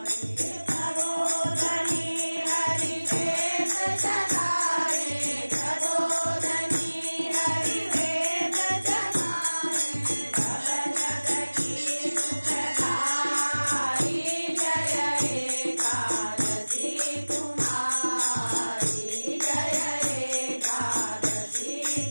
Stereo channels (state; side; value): inverted; both; correlation -1.00